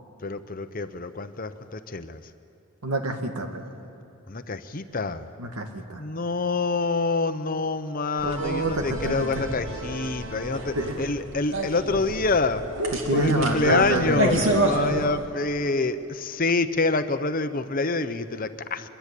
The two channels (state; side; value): normal; both; correlation 0.07